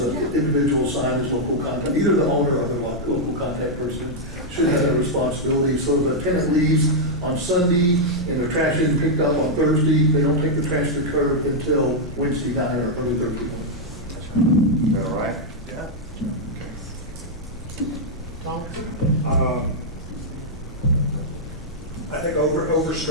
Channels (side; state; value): both; normal; correlation -0.04